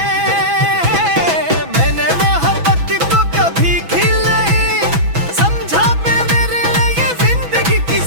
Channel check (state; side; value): late; left; 6.1 ms